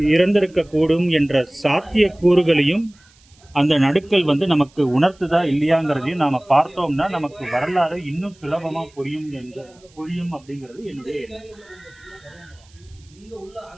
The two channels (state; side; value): noise; right; hiss, 30 dB below the sound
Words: இறந்திருக்க கூடும் என்ற சாத்திய கூறுகளையும் அந்த நடுக்கல் வந்து நமக்கு உணர்த்துதா இல்லையாங்கிறதையும் நாம பார்த்தோம்னா நமக்கு வரலாறு இன்னும் சுலபமா புரியும் அப்படிங்கிறது என்னுடைய எண்ணம்.